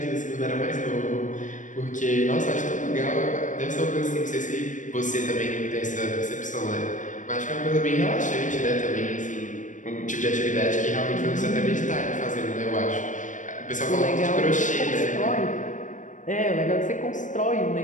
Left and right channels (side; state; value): right; late; 0.37 ms